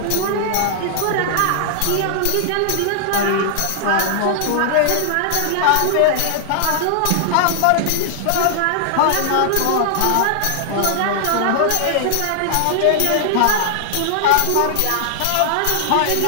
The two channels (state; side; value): different; both; correlation -0.01